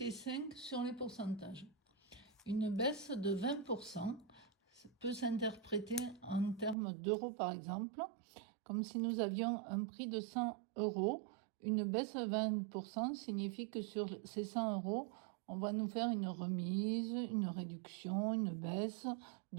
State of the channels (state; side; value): drops out; left; at 6.8 s